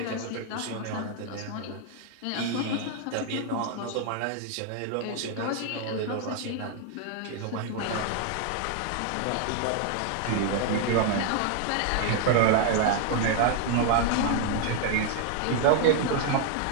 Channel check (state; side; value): different; both; correlation 0.00